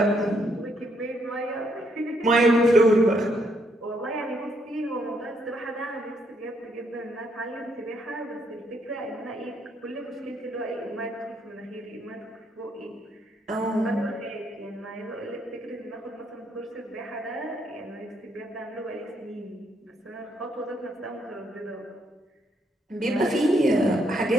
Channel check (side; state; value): both; normal; correlation 0.73